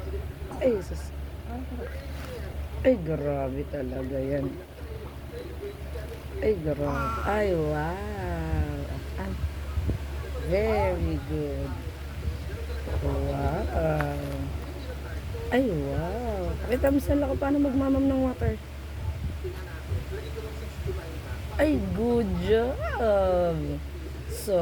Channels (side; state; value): both; identical; correlation 1.00